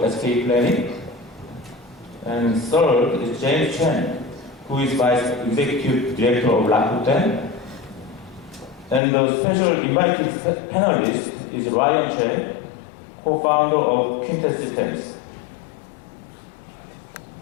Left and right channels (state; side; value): drops out; right; at 9.0 s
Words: of SK Planning. And third is James Chen, who is Vice Executive Director of Rakuten. And the special invited panelist is Ryan Che, co-founder of Quintet Systems.